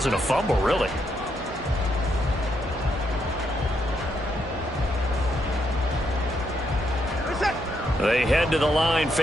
a fumble, really. They head to the line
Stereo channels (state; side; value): normal; both; correlation 0.78